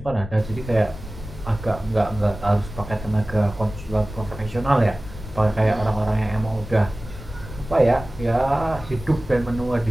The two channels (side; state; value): left; noise; rumble, 13 dB below the sound